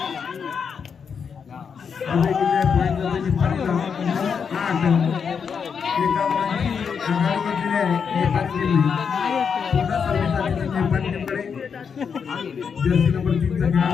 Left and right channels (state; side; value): quieter; right; 6.5 dB